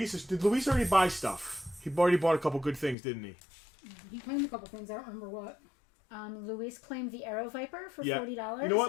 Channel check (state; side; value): drops out; right; at 3.0 s